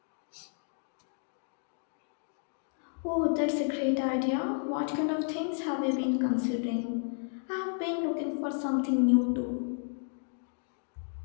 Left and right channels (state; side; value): silent; right; 56 dB below the other